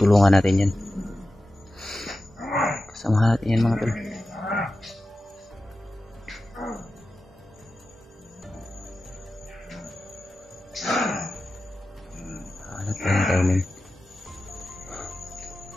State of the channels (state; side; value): normal; both; correlation 0.93